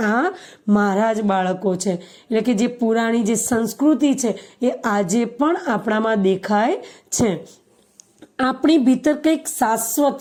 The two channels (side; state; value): both; identical; correlation 1.00